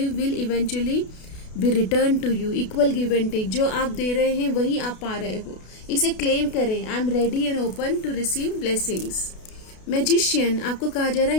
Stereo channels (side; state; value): right; late; 32 ms